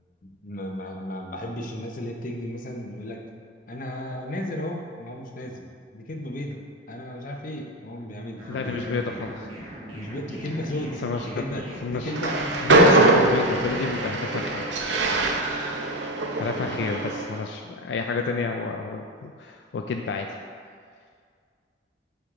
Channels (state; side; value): normal; both; correlation 0.11